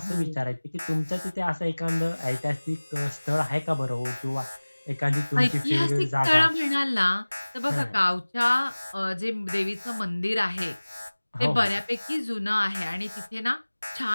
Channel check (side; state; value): both; inverted; correlation -1.00